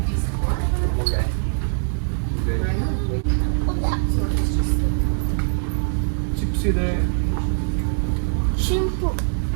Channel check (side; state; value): left; silent; digital silence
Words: ಚಿಪ್ಸ್ ಇದೆ, Shampoo.